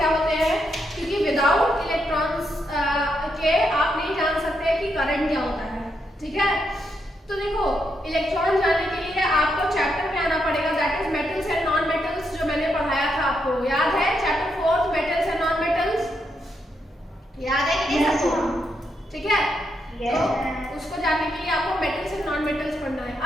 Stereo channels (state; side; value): normal; both; correlation 0.80